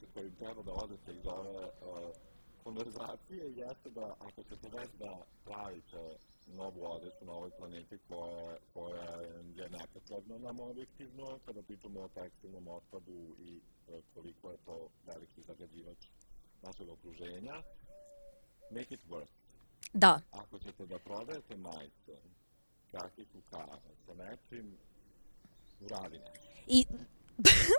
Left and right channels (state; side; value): inverted; both; correlation -1.00